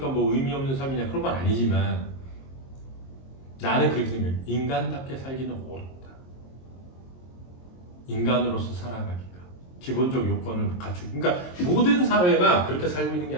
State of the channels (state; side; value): late; right; 22 ms